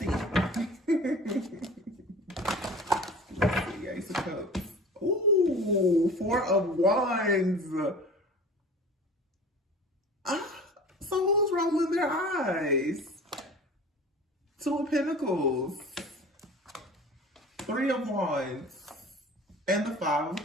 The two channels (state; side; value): normal; both; correlation 0.40